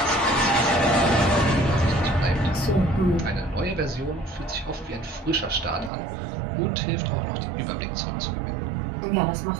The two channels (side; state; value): left; drops out; at 5.9 s